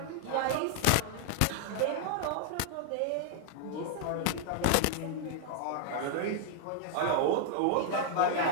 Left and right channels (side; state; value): both; different; correlation 0.00